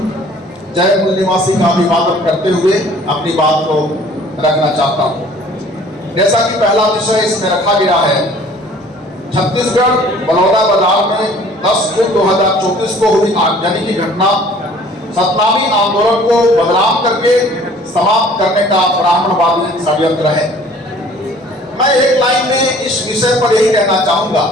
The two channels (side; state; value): both; normal; correlation 0.52